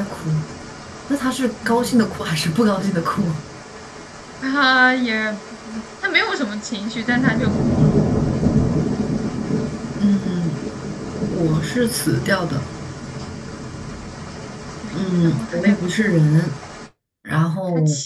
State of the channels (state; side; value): identical; both; correlation 1.00